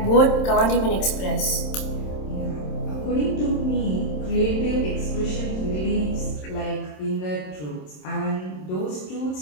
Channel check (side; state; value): right; late; 27 ms